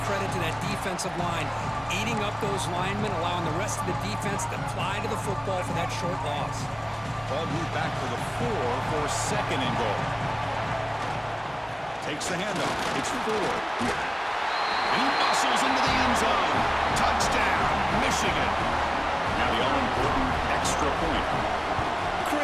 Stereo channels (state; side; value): identical; both; correlation 1.00